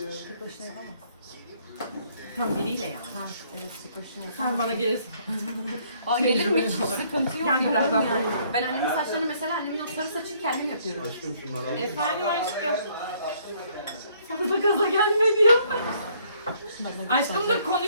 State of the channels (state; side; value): inverted; both; correlation -0.65